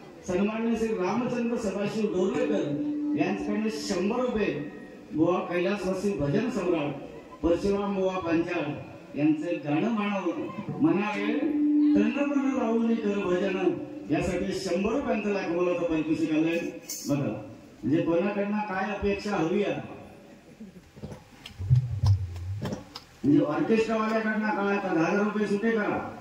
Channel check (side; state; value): both; identical; correlation 1.00